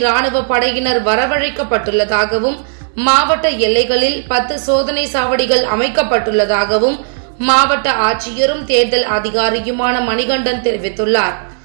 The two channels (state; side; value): silent; left; digital silence